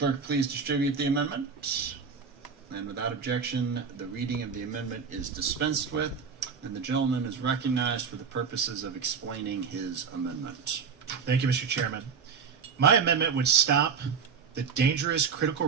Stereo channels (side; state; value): left; quieter; 6.1 dB